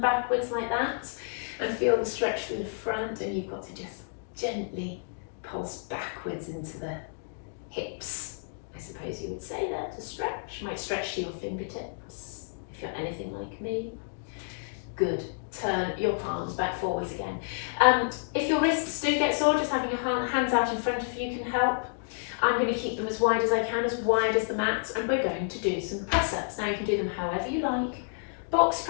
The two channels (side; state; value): right; silent; digital silence